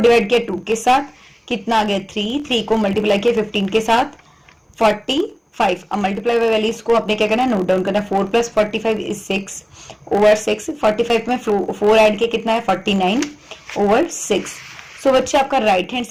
किया 2 के साथ कितना आ गया 3, 3 को मल्टीप्लाई किया 15 के साथ 45। अब मल्टीप्लाई वैल्यूज को आपने क्या करना है नोट डाउन करना है, 4 + 45 इज 6 ओवर 6, 45 में 4 ऐड किया कितना है 49 ओवर 6। सो बच्चे आपका राइट हैंड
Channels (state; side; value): identical; both; correlation 1.00